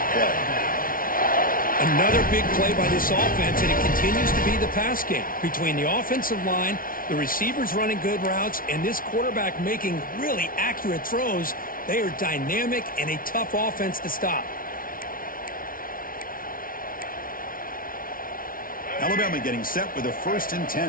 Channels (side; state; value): right; late; 0.41 ms